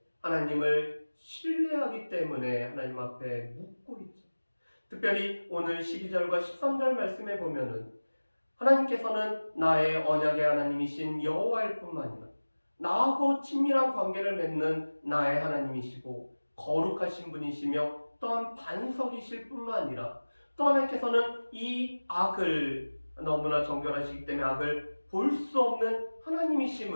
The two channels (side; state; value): both; inverted; correlation -1.00